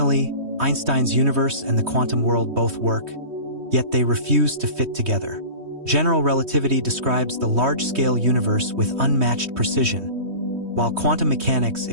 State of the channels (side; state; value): left; late; 3.2 ms